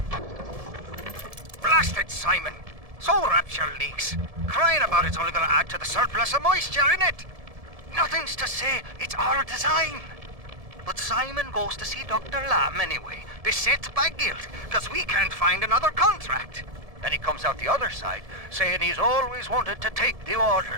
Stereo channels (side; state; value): left; late; 1.7 ms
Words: Blasted Simon! So rapture leaks. Crying about it's only gonna add to the surplus of moisture in it. Nothing's to say it's our design. But Simon goes to see Dr. Lamb anyway, beset by guilt, because we can't find another contract. Then he comes out the other side, saying he's always wanted to take the